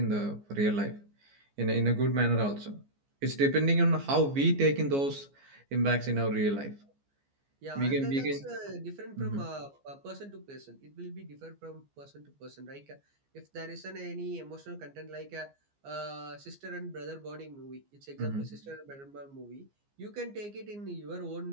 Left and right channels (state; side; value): late; left; 14 ms